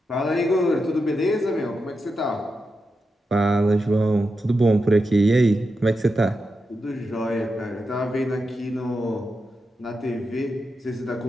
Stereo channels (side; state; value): both; normal; correlation 0.88